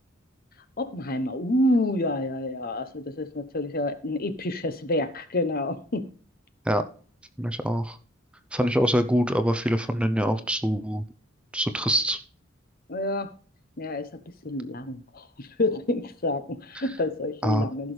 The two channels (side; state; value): both; normal; correlation 0.55